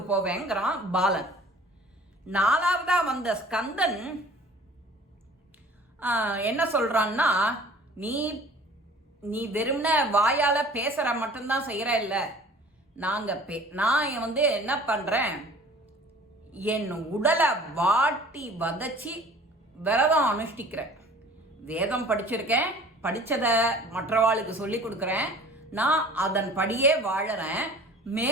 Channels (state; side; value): normal; both; correlation 0.47